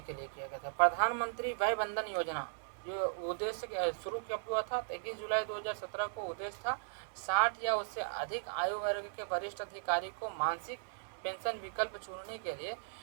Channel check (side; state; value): left; silent; digital silence